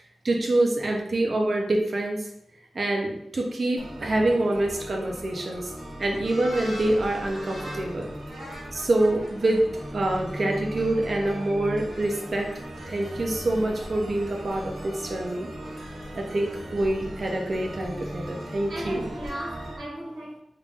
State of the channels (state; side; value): normal; both; correlation 0.95